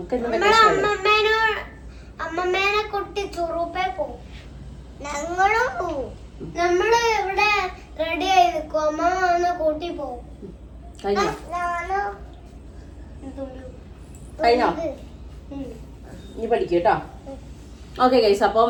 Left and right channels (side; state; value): both; identical; correlation 1.00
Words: അമ്മമ്മേനെ കുട്ടി ചുറുപ്പേ പോവും. ഞങ്ങളും പോവും. നമ്മള് ഇവിടെ റെഡി ആയി നിൽക്കും. അമ്മ വന്ന് കൂട്ടി പോവും. കഴിഞ്ഞോ? നീ പഠിക്കൂട്ടോ. ഓക്കെ ഗൈസ്, അപ്പം